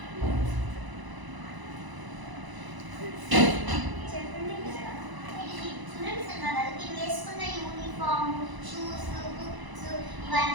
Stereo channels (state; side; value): late; left; 1.0 ms